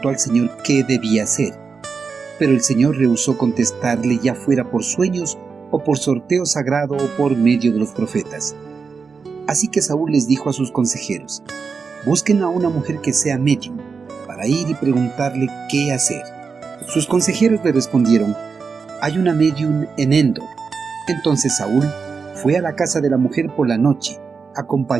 al Señor qué debía hacer. Pero el Señor rehusó contestarle, ya fuera por sueños o por sorteo sagrado o por medio de los profetas. Así que Saúl les dijo a sus consejeros: busquen a una mujer que sea médium, para ir y preguntarle qué hacer. Sus consejeros le respondieron: hay una médium en Endor. Entonces Saúl fue a la casa de la mujer por la noche,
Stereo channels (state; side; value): quieter; left; 5.2 dB